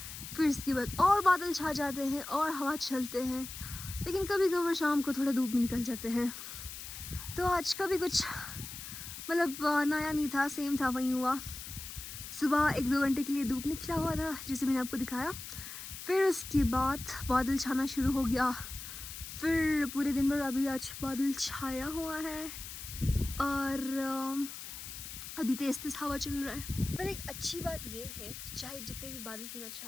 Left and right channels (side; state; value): left; noise; hiss, 10 dB below the sound